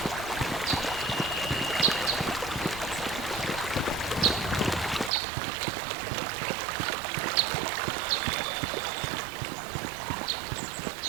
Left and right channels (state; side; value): drops out; left; at 5.1 s